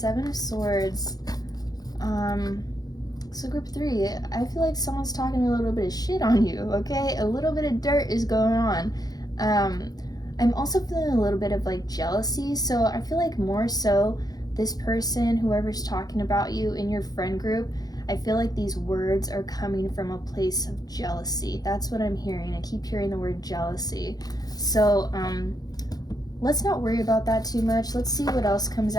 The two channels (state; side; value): late; right; 0.19 ms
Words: of Swords. So group 3, I feel like someone's talking a little bit of shit on you, okay? A little bit of dirt is going on. I'm also feeling a little bit of like jealousy, so I feel like more so this person, whoever's talking about you in your friend group, I feel like these words are coming from a place of jealousy. That's what I'm hearing. I keep hearing the word jealousy. So let's not worry about that too much. Let's see what else comes